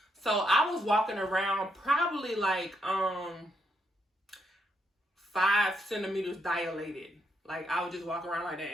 So I was walking around probably like 5 centimeters dilated. Like, I would just walk around like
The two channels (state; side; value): normal; both; correlation 0.78